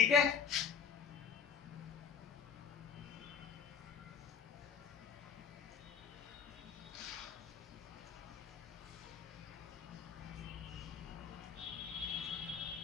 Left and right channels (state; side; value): quieter; right; 6.8 dB